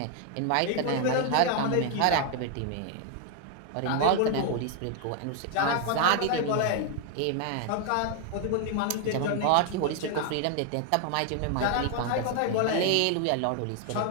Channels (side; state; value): both; different; correlation 0.00